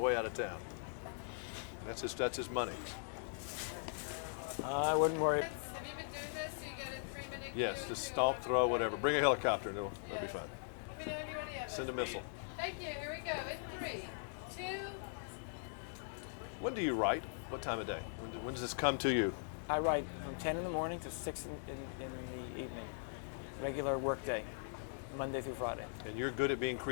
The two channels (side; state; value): right; silent; digital silence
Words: out of town. That's his money. I wouldn't worry. Have you been doing this? So you get a 3-minute Yes, cue just if stomp, throw, whatever. Bring a helicopter, and it'll be fine. you know anybody else. Send a missile. Thank you. Here we go. In 3, 2. When do you write? What time of day? When does this come to you? I write from 10 in the morning to 6 in the evening. Regular work day, Monday through Friday. And you're good at being